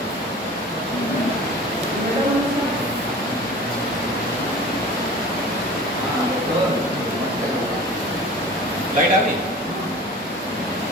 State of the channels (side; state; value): both; normal; correlation 0.40